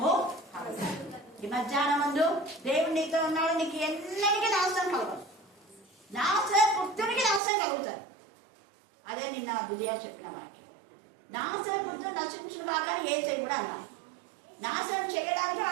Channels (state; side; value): drops out; left; at 7.4 s